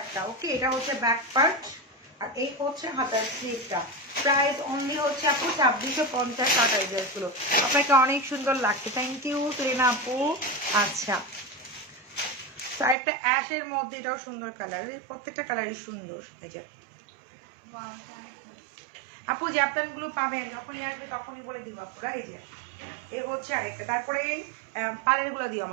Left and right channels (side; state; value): left; drops out; at 13.0 s